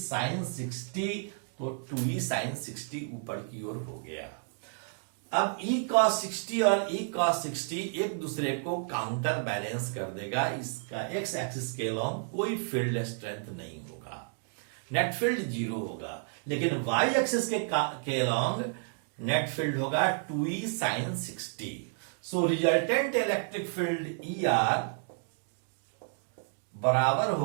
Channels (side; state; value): left; silent; 57 dB below the other